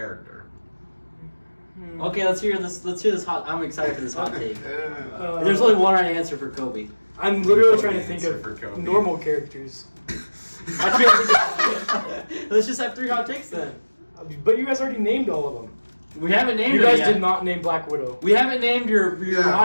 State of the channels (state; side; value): inverted; both; correlation -1.00